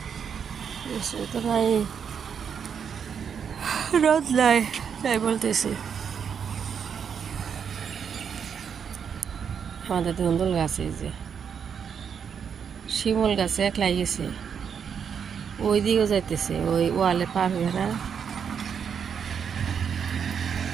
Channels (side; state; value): left; quieter; 7.2 dB